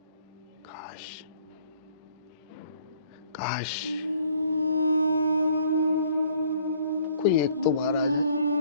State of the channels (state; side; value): inverted; both; correlation -0.59